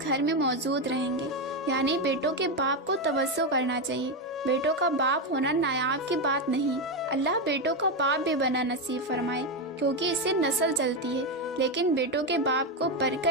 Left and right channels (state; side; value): normal; both; correlation 0.09